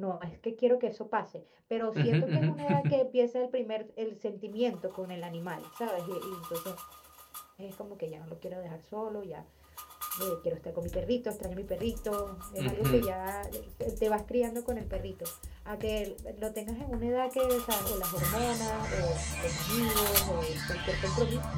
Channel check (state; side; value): identical; both; correlation 1.00